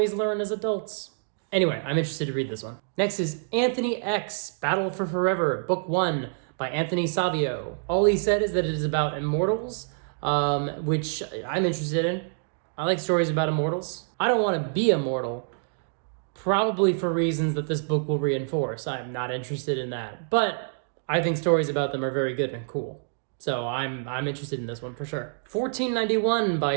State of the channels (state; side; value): silent; left; digital silence